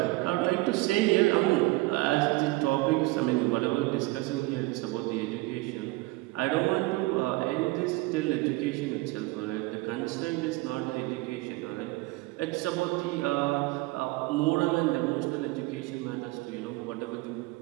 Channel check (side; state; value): left; quieter; 21.5 dB